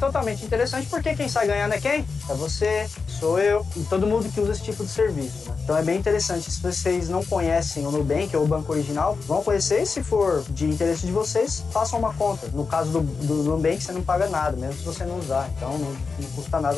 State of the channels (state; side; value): quieter; right; 4.8 dB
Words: totalmente interessante porque quem sai ganhando é quem? É você, sou eu e todo mundo que usa esse tipo de serviço, né? Então é bem interessante. Se vocês não conhecem o Nubank ou o Banco Original, vão conhecer, e se for de interesse de vocês, façam uma conta. No caso do Nubank, você não paga nada, mesmo se você não usar. Então não custa nada